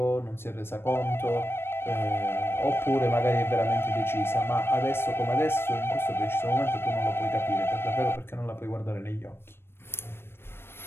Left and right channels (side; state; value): right; late; 0.12 ms